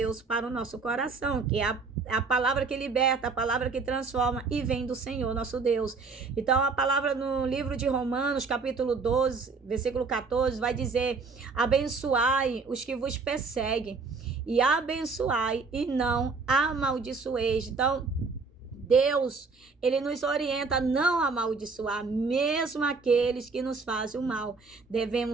para o nosso coração, que é a palavra que liberta, a palavra que transforma e vem do Senhor, nosso Deus. Então, a palavra no livro de Romanos, capítulo 12, versículo 14, vai dizer: abençoai os que vos perseguem, e abençoai e não amaldiçoeis. Então, Deus, ele nos orienta a não amaldiçoar, mesmo aqueles que nos fazem o mal.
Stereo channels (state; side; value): quieter; left; 4.4 dB